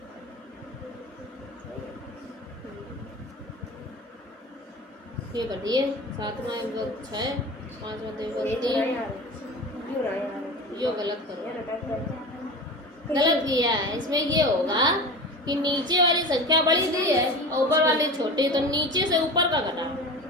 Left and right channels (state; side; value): normal; both; correlation 0.32